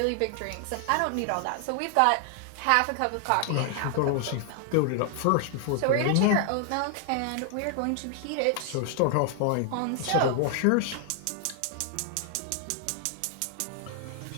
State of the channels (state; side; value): different; both; correlation 0.00